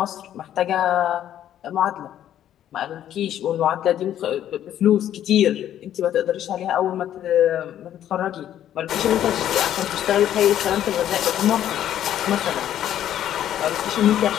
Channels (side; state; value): right; quieter; 11.1 dB